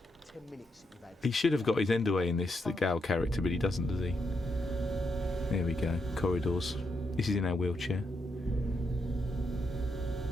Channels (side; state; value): both; normal; correlation 0.81